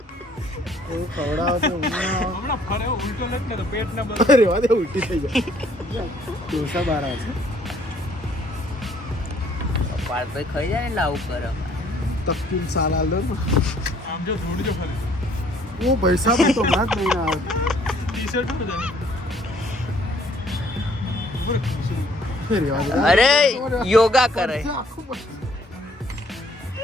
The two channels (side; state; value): both; normal; correlation 0.62